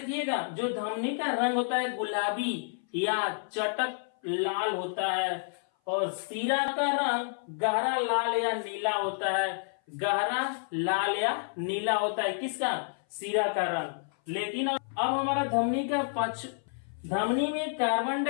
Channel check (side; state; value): right; silent; 56 dB below the other